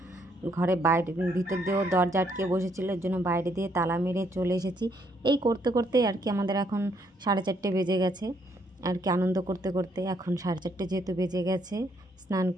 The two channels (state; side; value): normal; both; correlation 0.71